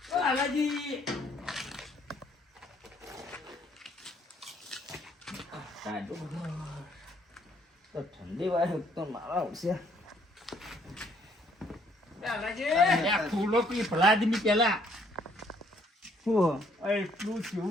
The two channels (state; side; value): normal; both; correlation 0.65